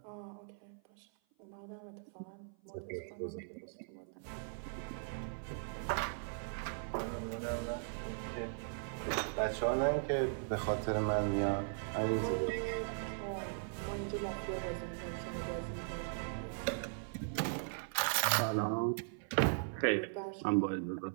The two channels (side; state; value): left; silent; 52 dB below the other